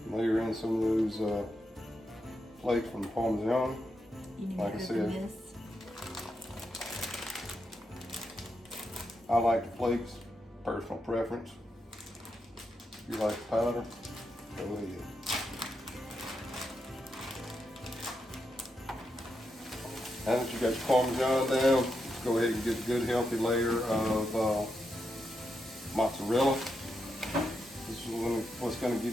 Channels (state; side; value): normal; both; correlation 0.85